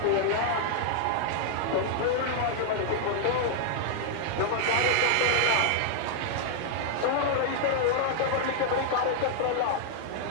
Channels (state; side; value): different; both; correlation -0.01